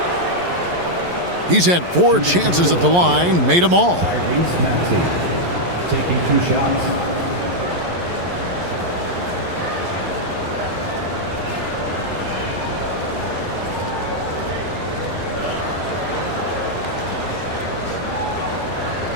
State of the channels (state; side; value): late; left; 11 ms